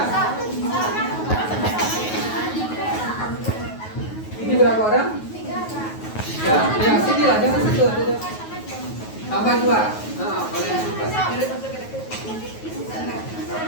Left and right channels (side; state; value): right; late; 9.4 ms